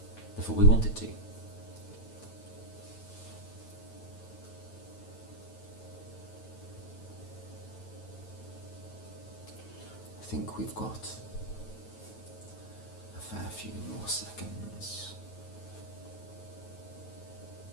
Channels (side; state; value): right; late; 9.1 ms